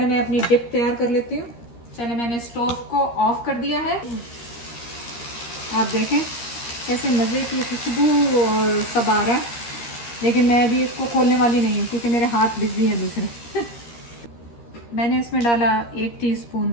मैं अपनी डिप तैयार कर लेती हूँ। चलिए, मैंने स्टोव को ऑफ कर दिया है। आप देखें कैसे मज़े की खुशबू और सब आ रहा है, लेकिन मैं अभी इसको खोलने वाली नहीं हूँ क्योंकि मेरे हाथ बिजी हैं दूसरे। मैंने इसमें डाला 1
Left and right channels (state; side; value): late; right; 13 ms